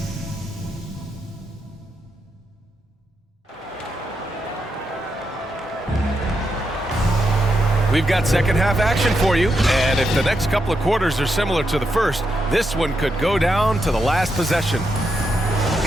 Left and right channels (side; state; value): both; normal; correlation 0.83